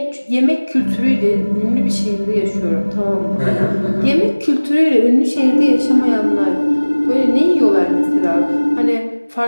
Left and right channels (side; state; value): both; inverted; correlation -1.00